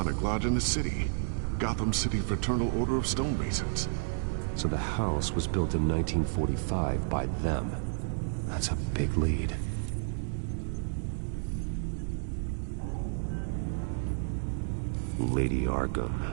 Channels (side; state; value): left; silent; digital silence